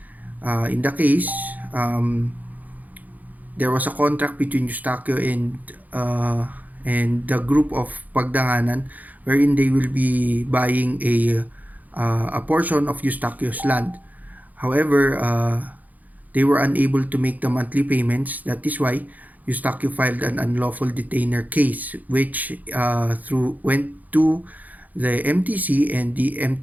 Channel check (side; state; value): left; late; 0.080 ms